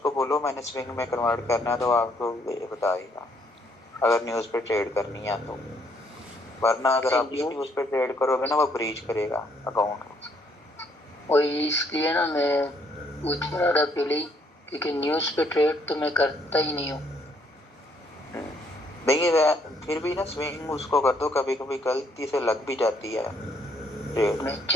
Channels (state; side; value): normal; both; correlation 0.68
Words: बोलो मैंने स्विंग में कन्वर्ट करना है, तो आपको बताएगा अगर न्यूज़ पे ट्रेड करनी है तो। वरना अगर आप न्यूज़ पे ट्रेड करोगे ना, वो ब्रीच करेगा अकाउंट। वही इसलिए ना मैं पूछ रहा था पहले, क्योंकि न्यूज़ पे ट्रेड तो मैं करता ही नहीं हूँ। नहीं फिर भी ना स्विंग उसको कर दो, कभी कभी गलती से लग भी जाती है ट्रेड। मैं